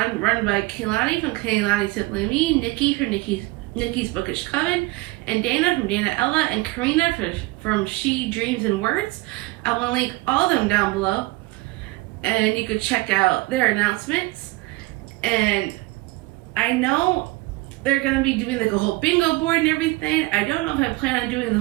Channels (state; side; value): quieter; left; 21.6 dB